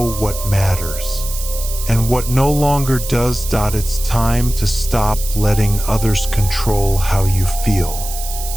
what matters, and what no longer does. It's time to stop letting others control how you feel.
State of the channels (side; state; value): right; noise; hiss, 9 dB below the sound